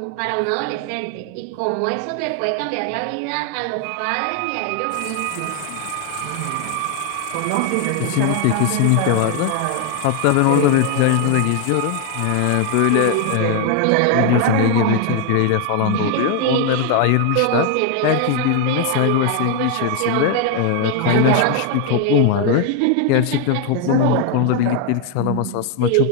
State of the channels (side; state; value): both; different; correlation 0.00